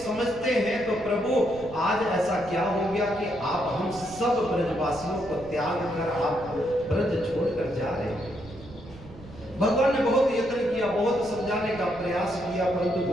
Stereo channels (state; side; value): noise; right; rumble, 18 dB below the sound